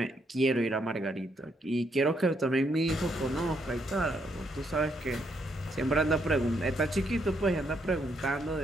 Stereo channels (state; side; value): normal; both; correlation 0.75